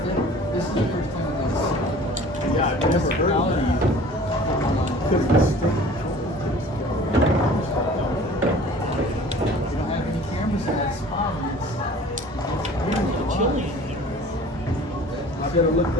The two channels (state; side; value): normal; both; correlation 0.46